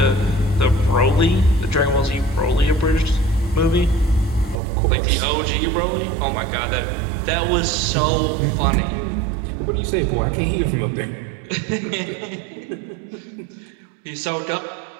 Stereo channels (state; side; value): drops out; left; at 4.6 s